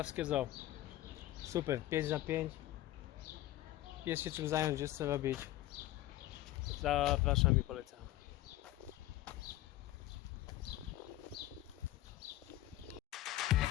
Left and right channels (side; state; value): right; quieter; 15.3 dB